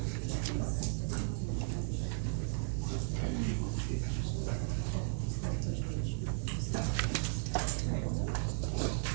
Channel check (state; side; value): silent; left; digital silence